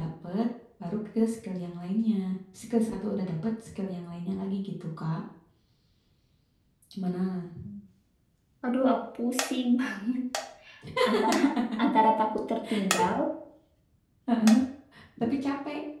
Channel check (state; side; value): identical; both; correlation 1.00